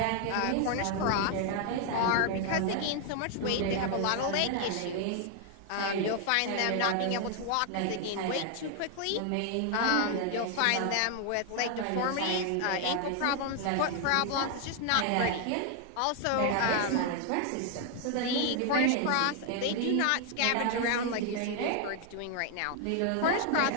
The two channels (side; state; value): both; different; correlation 0.00